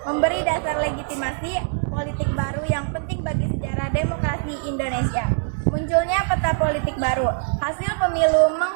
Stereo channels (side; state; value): left; silent; 64 dB below the other